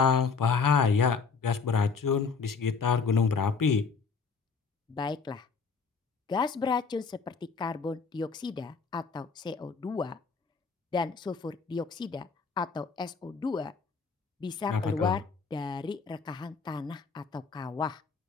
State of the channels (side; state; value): right; quieter; 5.2 dB